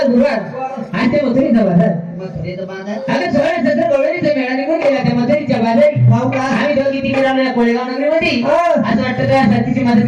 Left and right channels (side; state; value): both; identical; correlation 1.00